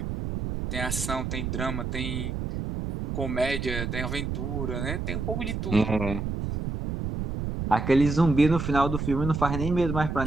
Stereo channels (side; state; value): right; noise; rumble, 3 dB below the sound